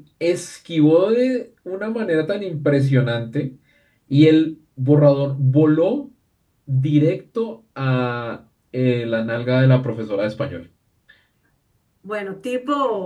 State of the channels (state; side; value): identical; both; correlation 1.00